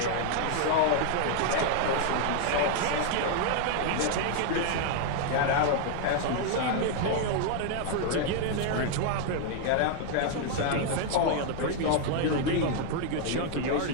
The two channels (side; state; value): both; different; correlation 0.00